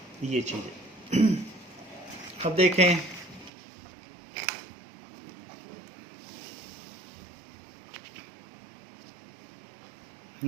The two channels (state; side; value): drops out; left; at 3.5 s